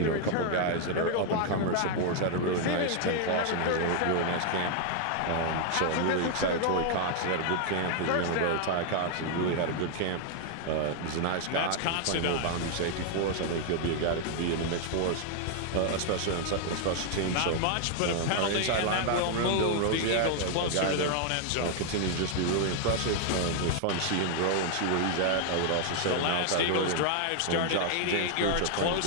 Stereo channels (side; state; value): both; different; correlation 0.00